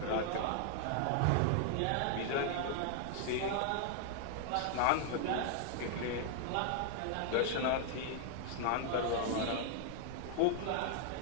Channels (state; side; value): different; both; correlation 0.00